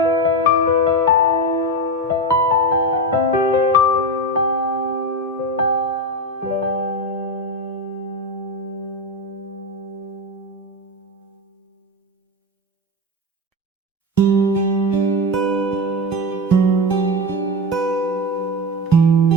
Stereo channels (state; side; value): normal; both; correlation 0.17